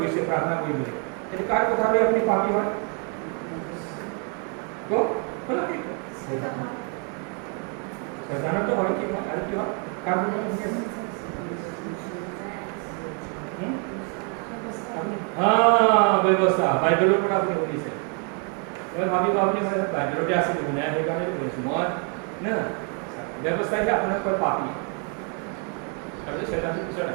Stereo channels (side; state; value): left; quieter; 38.0 dB